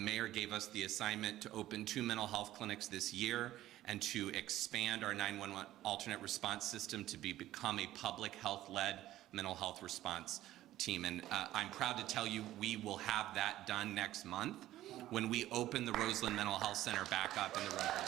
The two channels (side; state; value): left; quieter; 14.3 dB